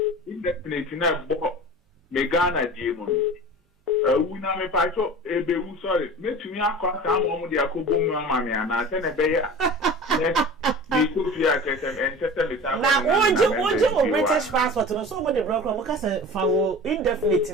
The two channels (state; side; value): normal; both; correlation 0.36